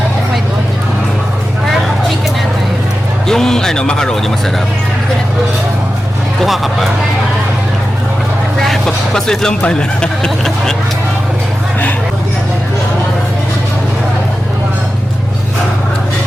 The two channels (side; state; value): both; normal; correlation 0.92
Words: fried onion. Or chicken ata yun. Yung macaroni masarap. Hindi ko na Kuha ka pa. Pasweet lang pala.